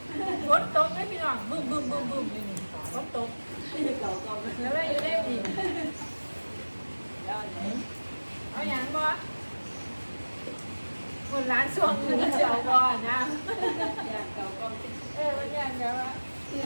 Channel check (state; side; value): inverted; both; correlation -1.00